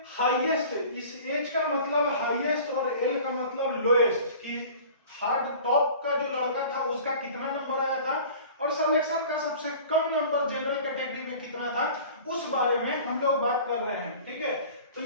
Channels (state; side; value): inverted; both; correlation -0.43